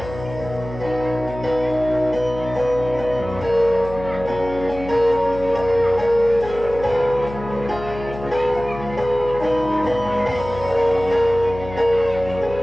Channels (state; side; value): noise; left; hum, 12 dB below the sound